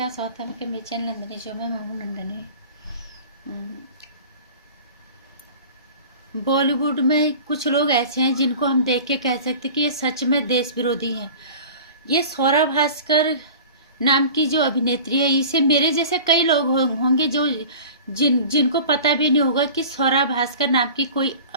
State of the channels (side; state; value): both; inverted; correlation -0.40